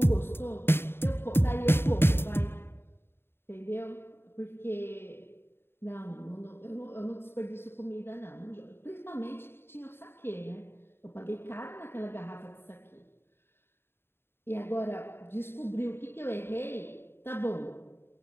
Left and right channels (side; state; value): right; late; 0.11 ms